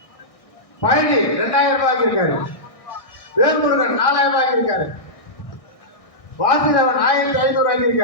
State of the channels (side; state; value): right; late; 1.6 ms